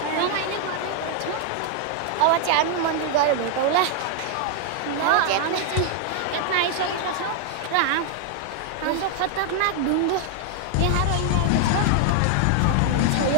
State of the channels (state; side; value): different; both; correlation 0.00